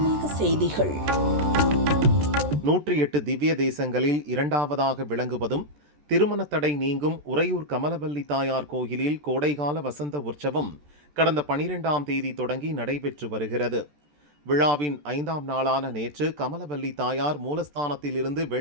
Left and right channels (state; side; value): late; left; 14 ms